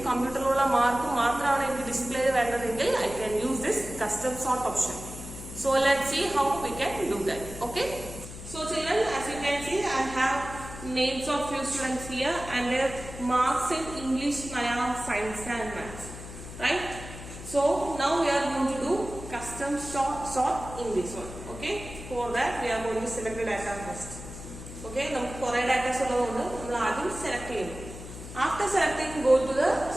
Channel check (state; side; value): noise; left; hum, 12 dB below the sound